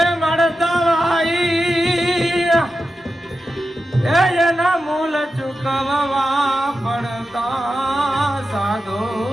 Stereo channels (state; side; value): normal; both; correlation 0.90